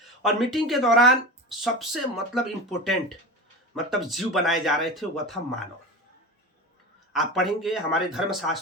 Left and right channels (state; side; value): normal; both; correlation 0.28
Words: और मीटिंग के दौरान सबसे मतलब इम्पोर्टेंट मतलब जीव बनाए जा रहे थे, वह था मानव। आप पढ़ेंगे हमारे